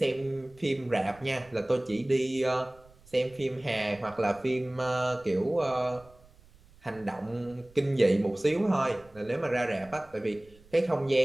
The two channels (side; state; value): right; noise; rumble, 26 dB below the sound